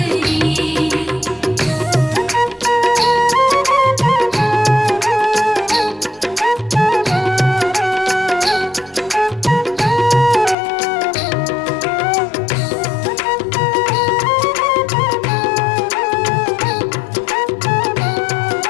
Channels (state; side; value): drops out; right; at 10.6 s